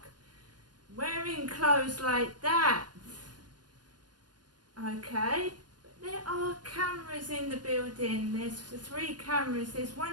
wearing clothes like that? Okay, but there are cameras in the building. There's 3 cameras. There's one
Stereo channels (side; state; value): left; late; 0.70 ms